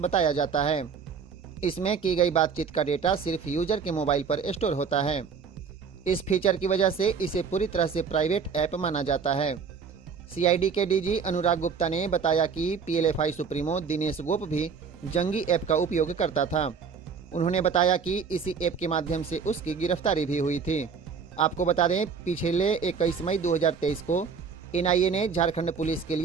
जाता है। इसमें की गई बातचीत का डेटा सिर्फ यूजर के मोबाइल पर स्टोर होता है। इस फीचर की वजह से इसे पूरी तरह से प्राइवेट ऐप माना जाता है। सीआईडी के डीजी अनुराग गुप्ता ने बताया कि पीएलएफआई सुप्रीमो दिनेश गोप भी जंगी ऐप का उपयोग करता था। उन्होंने बताया कि इसी ऐप के माध्यम से उसकी गिरफ्तारी भी हुई थी। आपको बता दें, पिछले 21 मई 2023 को एनआईए ने झारखंड पुलिस के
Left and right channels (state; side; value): quieter; left; 5.9 dB